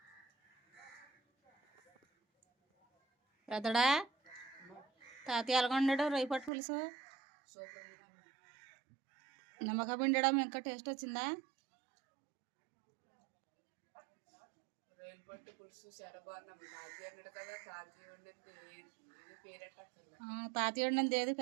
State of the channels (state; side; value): drops out; left; at 6.5 s